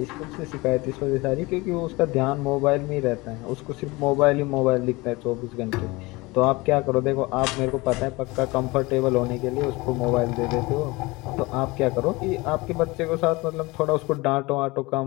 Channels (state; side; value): quieter; right; 23.1 dB